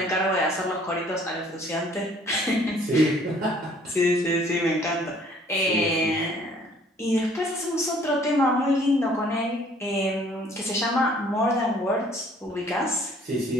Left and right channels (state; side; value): normal; both; correlation 0.58